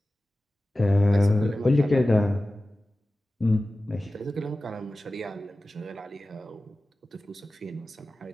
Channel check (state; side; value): normal; both; correlation 0.96